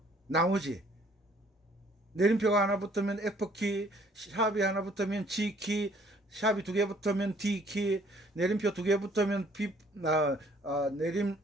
내림표가 하나 붙으면 F키, 샵이 하나 붙으면 G키, 샵이 두 개 붙으면 D키, 내림표 두 개 붙으면 B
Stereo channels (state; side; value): normal; both; correlation 0.60